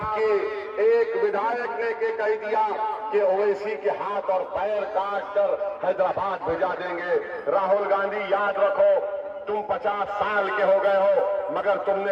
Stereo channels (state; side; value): identical; both; correlation 1.00